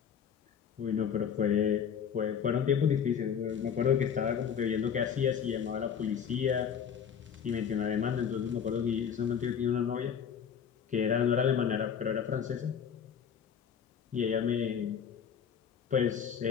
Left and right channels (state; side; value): quieter; right; 7.7 dB